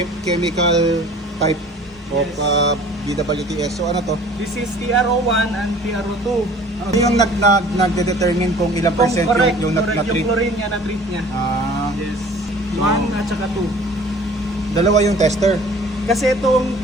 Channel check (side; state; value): both; normal; correlation 0.48